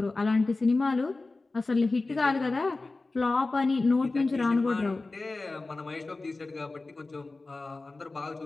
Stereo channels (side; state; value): right; quieter; 3.4 dB